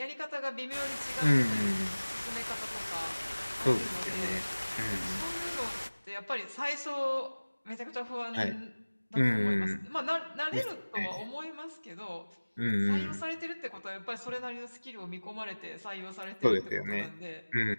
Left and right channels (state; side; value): inverted; both; correlation -1.00